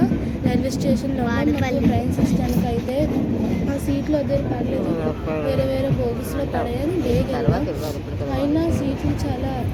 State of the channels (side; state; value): both; identical; correlation 1.00